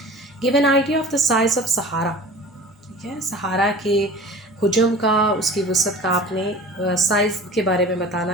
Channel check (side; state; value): both; normal; correlation 0.41